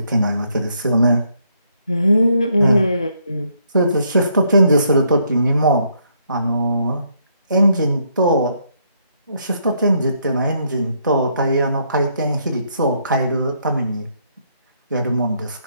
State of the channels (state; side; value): inverted; both; correlation -0.72